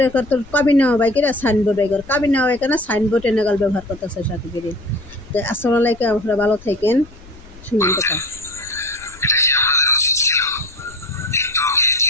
করতে কাবিন নেওয়া বাইকেরা সাইন বোর্ড বাইক কাবিন নেওয়া বাইকে না সাইন বোর্ড এনেগাল ব্যবহার করতেছে সাকিবের। তো আসসালামু আলাইকুম, আপনারা ভালো থাকেন, শুনুন কথা। এটা কি আপনাদের উচিত ছিল? একটু কি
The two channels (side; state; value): left; noise; rumble, 22 dB below the sound